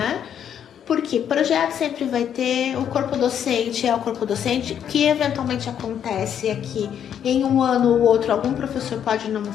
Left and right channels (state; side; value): quieter; right; 9.1 dB